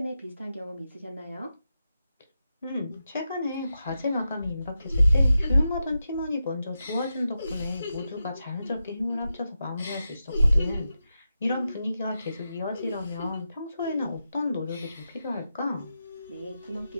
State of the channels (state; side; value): inverted; both; correlation -0.89